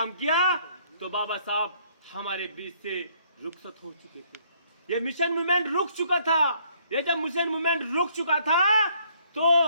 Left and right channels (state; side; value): inverted; both; correlation -0.65